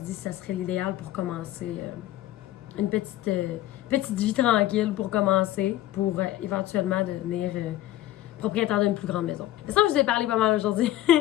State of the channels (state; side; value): quieter; right; 14.6 dB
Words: dit que ça serait l'idéal pour commencer une petite vie tranquille pour commencer, pour éventuellement devenir... propriétaire d'une plus grande maison. C'est ça que je vous ai parlé pas mal aujourd'hui.